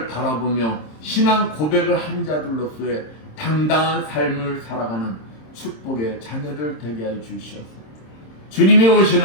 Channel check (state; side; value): late; right; 26 ms